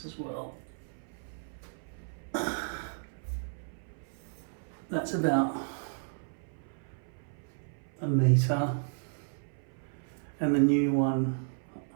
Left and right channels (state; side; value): silent; left; 56 dB below the other